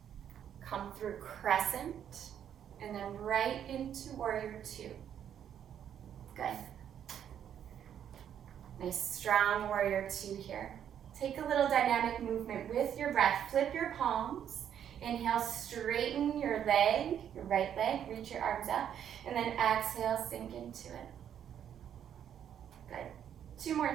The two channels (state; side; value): quieter; left; 9.4 dB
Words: Come through crescent. And then right into warrior two. Good. Nice strong warrior two here. Take a little dynamic movement with your breath. Flip your palms. Inhale, straighten your leg, your right leg, reach your arms up. And then exhale, sink into it. Good. 2 more